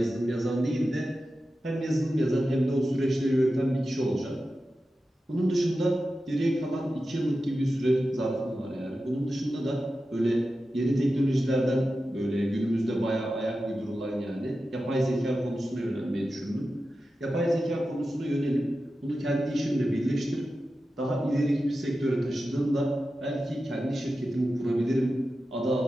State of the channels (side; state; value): both; normal; correlation 0.92